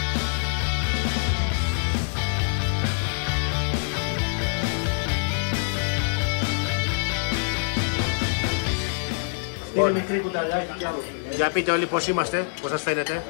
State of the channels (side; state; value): right; silent; digital silence